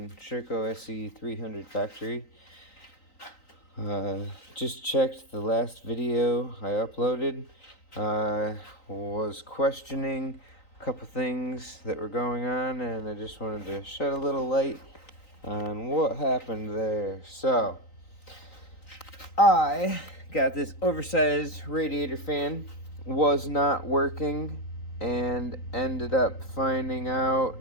Sherco SE 300 factory. Just checked the last video I uploaded. Was questioning a couple things that were going on, and I just wanted to shed a little light on what happened there. So, I got this oversized radiator fan, was not working, and ended up finding out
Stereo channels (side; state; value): right; late; 3.9 ms